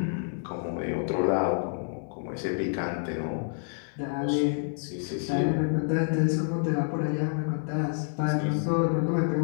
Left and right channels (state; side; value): silent; right; digital silence